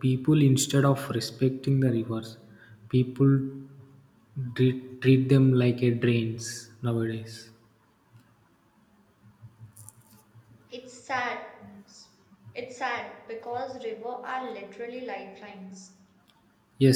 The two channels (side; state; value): both; identical; correlation 1.00